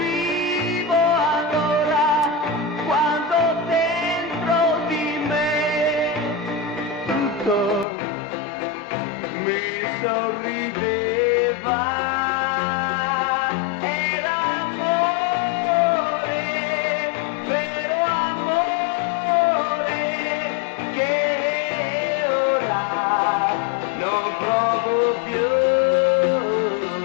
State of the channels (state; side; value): drops out; right; at 7.9 s